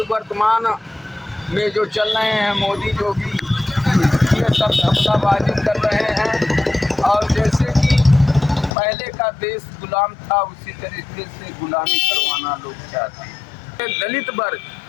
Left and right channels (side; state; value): right; drops out; at 8.7 s